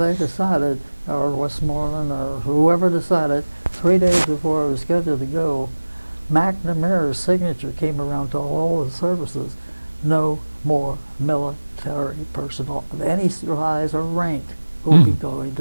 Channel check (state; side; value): inverted; both; correlation -1.00